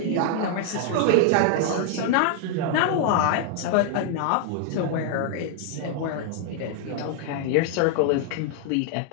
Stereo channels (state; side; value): different; both; correlation 0.00